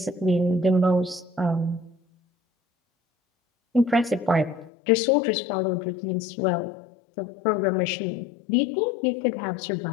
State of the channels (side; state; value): right; drops out; at 4.7 s